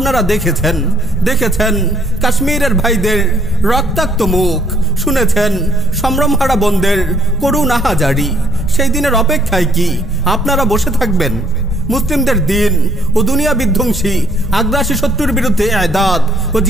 দেখেছেন কাশ্মীরের ভাইদের রক্তাক্ত মুখ, শুনেছেন সম্ভ্রমহারা বোনদের করুণ আহাজারি। সেই দিনের অপেক্ষায় কি আপনারা বসে থাকবেন? মুসলিমদের দিন ও দুনিয়া বিধ্বংসী আগ্রাসী শত্রুর বিরুদ্ধে ইদাদ ও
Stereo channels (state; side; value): normal; both; correlation 0.65